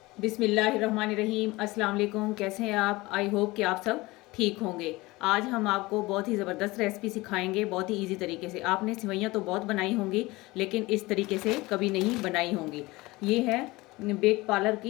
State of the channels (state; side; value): quieter; right; 21.2 dB